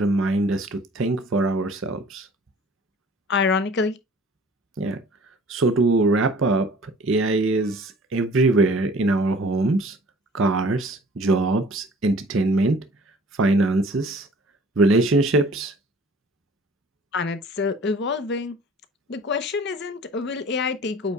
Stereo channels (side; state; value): both; normal; correlation 0.49